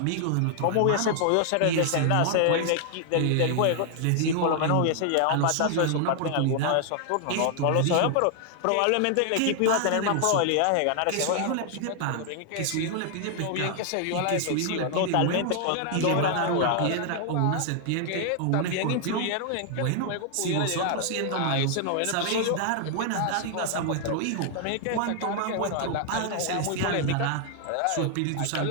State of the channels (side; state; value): both; different; correlation 0.00